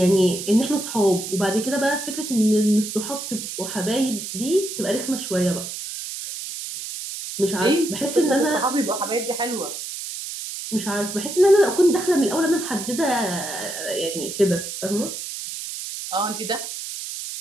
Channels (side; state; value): right; noise; hiss, 7 dB below the sound